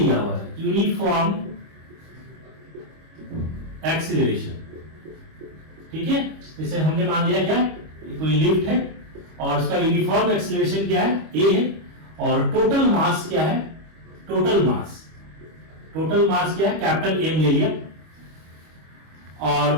हुआ है, यूनिफॉर्म एक्सेलरेशन, ठीक है। जैसे हमने मान लिया क्या, कोई लिफ्ट है और उसका यूनिफॉर्म एक्सेलरेशन क्या है, ए है, और टोटल मास क्या है, टोटल मास क्या है, कैपिटल एम ले लिया।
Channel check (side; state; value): left; late; 25 ms